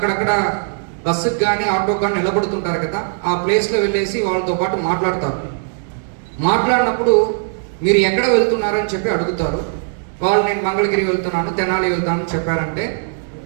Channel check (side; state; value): left; silent; digital silence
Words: బస్సుకి కానీ ఆటోకి కానీ నిలబడుతుంటారు కదా, ఆ ప్లేస్లో వెళ్ళేసి వాళ్ళతో పాటు మాట్లాడతారు. మాట్లాడినప్పుడు మీరు ఎక్కడ వెళ్తున్నారని చెప్పి అడుగుతారు. వాళ్ళు నేను మంగళగిరి వెళ్తున్నాను, తెనాలి వెళ్తాను చెప్పారంటే